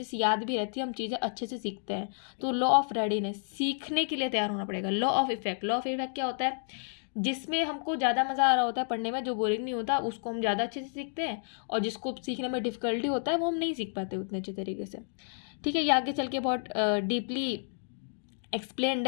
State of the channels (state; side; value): silent; right; digital silence